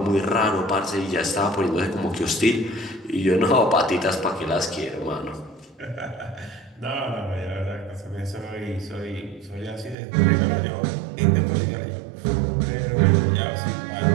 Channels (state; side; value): drops out; left; at 10.0 s